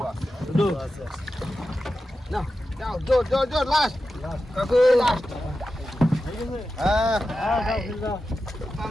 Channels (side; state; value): both; normal; correlation 0.92